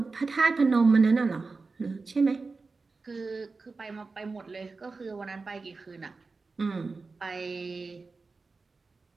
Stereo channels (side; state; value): left; quieter; 4.1 dB